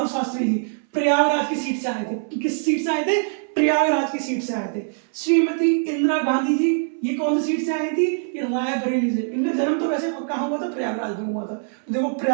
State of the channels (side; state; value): left; silent; 64 dB below the other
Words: शास्त्री जी प्रयागराज की सीट से आए थे। किस सीट से आए थे? प्रयागराज की सीट से आए थे। श्रीमती इंदिरा गांधी जी ये कौन सी सीट से आई थी? ये रायबरेली से। इनका जन्म तो वैसे कहाँ हुआ था? प्रयागराज में हुआ था। तो देखो